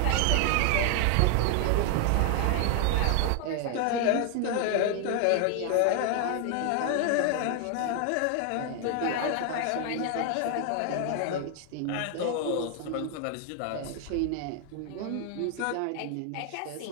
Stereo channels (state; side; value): different; both; correlation 0.00